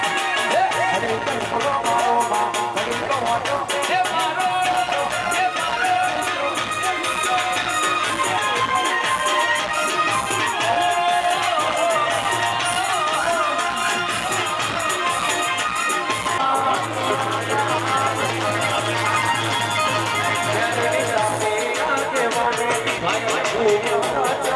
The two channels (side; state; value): both; identical; correlation 1.00